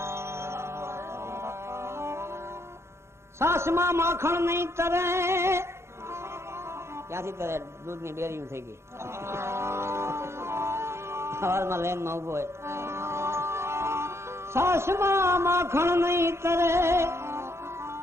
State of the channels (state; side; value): late; left; 0.13 ms